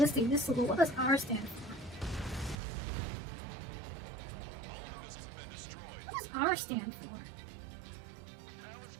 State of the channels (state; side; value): drops out; left; at 2.6 s